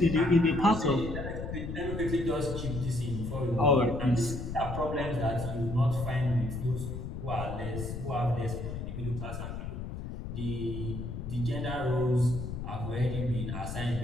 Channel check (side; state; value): left; noise; rumble, 7 dB below the sound